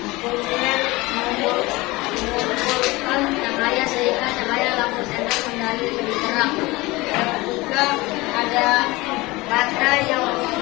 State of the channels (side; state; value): right; quieter; 21.6 dB